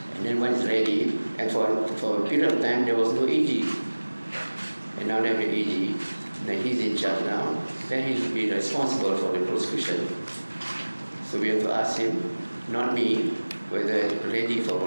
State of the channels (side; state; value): both; inverted; correlation -1.00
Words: And then when it's ready, and for a period of time there was no AG, and now they have an AG, then he's in charge now. Then he'll be responsible for the prosecution. So we have to ask him, not me, whether it's ready for